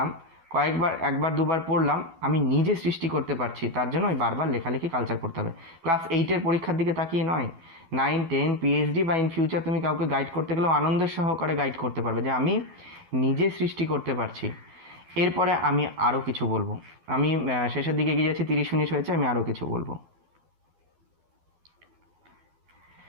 কয়েকবার 1-2বার পড়লাম, আমি নিজে সৃষ্টি করতে পারছি। তার জন্য ওই বারবার লেখালেখি কালচার করতে হবে। ক্লাস 8-এর পরীক্ষার দিকে তাকিয়ে নয়, 9, 10, পিএইচডি বা ইন ফিউচার তুমি কাউকে গাইড করতে গেলেও আনন্দের সহকারে গাইড করতে পারবে যে আমি নিজে সৃষ্টি করতে পারছি। এরপরে আমি আরও কিছু বলবো। আমি শেষের দিকে এগিয়ে যাচ্ছি, 30 মিনিট হয়েছে, আমি আরও কিছু বলবো।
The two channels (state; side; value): late; left; 12 ms